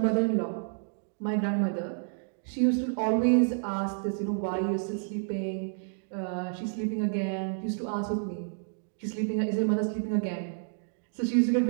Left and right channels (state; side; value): silent; left; digital silence